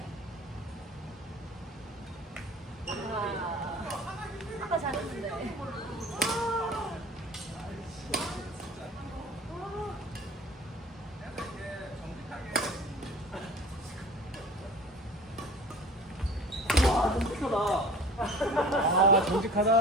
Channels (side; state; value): both; normal; correlation 0.43